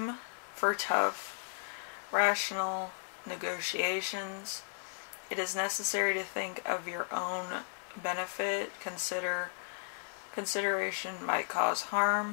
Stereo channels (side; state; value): right; silent; 54 dB below the other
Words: for tough, rational negotiations. It is necessary to think of your own benefit. Consideration might cause